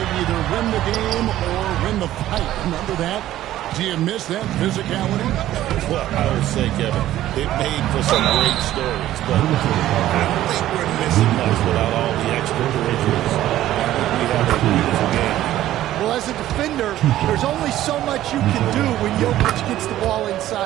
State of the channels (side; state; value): left; quieter; 13.6 dB